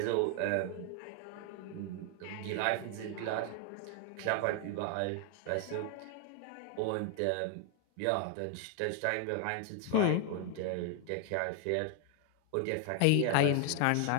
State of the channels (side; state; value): both; different; correlation 0.00